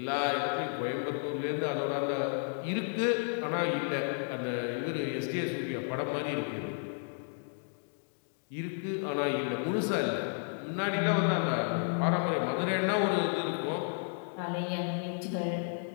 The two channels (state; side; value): silent; right; 56 dB below the other